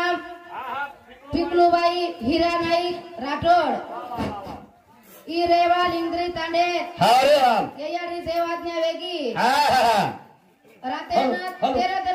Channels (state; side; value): identical; both; correlation 1.00